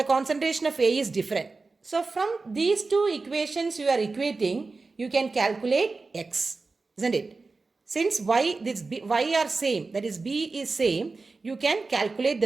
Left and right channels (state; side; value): quieter; left; 3.9 dB